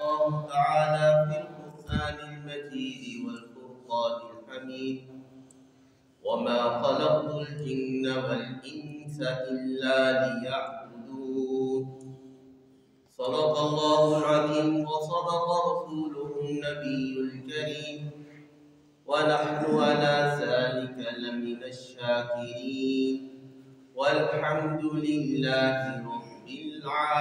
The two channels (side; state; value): both; identical; correlation 1.00